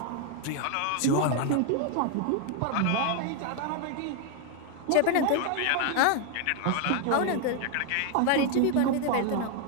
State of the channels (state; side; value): different; both; correlation 0.00